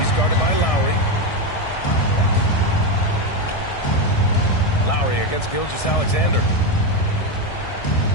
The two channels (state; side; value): late; right; 1.6 ms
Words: guarded by Lowry. Lowry against Gilgeous-Alexander.